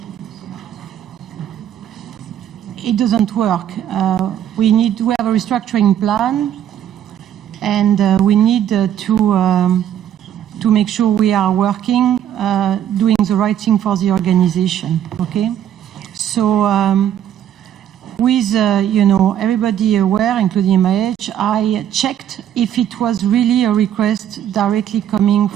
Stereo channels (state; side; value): quieter; left; 10.4 dB